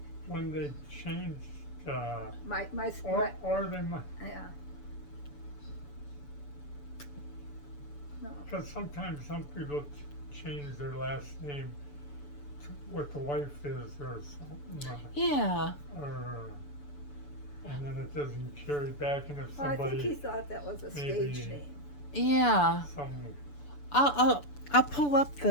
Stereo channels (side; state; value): right; late; 6.9 ms